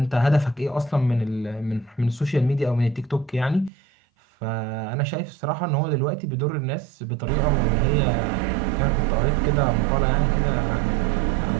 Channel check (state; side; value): drops out; left; at 3.7 s